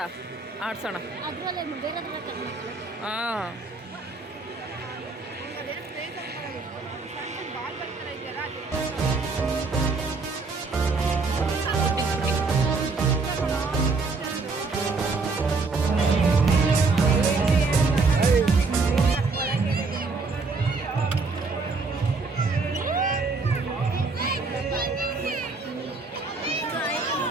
ಆಡ್ಸೋಣ. ಅದರಲ್ಲೇ ಬೇರೆ ಹಾಂ,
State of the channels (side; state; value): left; quieter; 4.0 dB